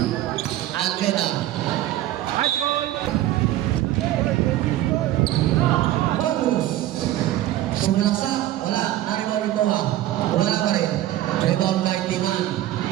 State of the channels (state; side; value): quieter; left; 14.2 dB